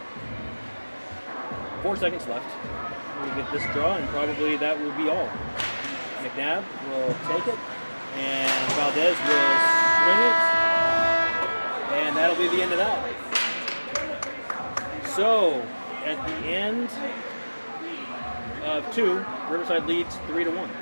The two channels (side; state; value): both; inverted; correlation -1.00